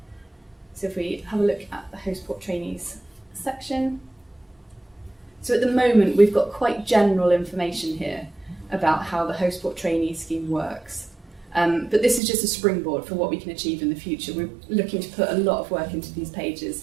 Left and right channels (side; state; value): left; drops out; at 12.2 s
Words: So if we have a look at the host port trainees section. So at the moment, we've got quite general information here about how the host port trainee scheme works. But this is just a springboard for what we can achieve in the future. We're looking to put a lot of work into these pages